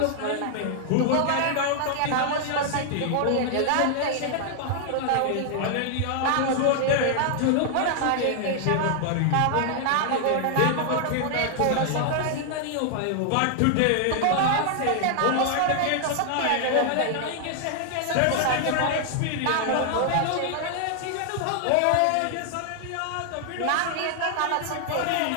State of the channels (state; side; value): different; both; correlation 0.00